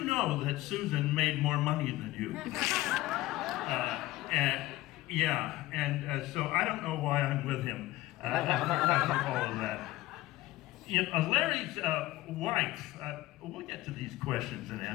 know that Susan made more money than you." So I don't know why I'm with him after all of that. Larry's wife, we'll get to these questions and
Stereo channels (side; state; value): right; quieter; 17.4 dB